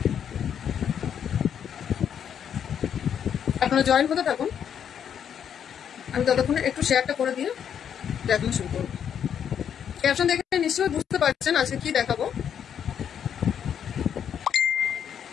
আপনারা জয়েন হতে থাকুন, আমি ততক্ষণে একটু শেয়ারটা করে দিয়ে দেখানো শুরু করব। ক্যাপশন দেখে নিশ্চয়ই বুঝতে পারছেন আজকে কি দেখাবো।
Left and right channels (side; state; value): right; quieter; 8.5 dB